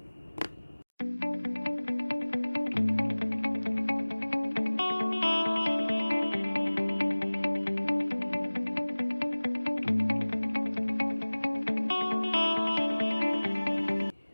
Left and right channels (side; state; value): both; inverted; correlation -1.00